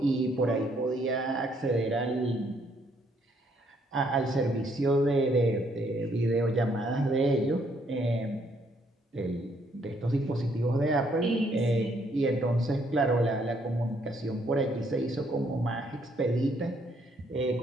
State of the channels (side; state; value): both; normal; correlation 0.69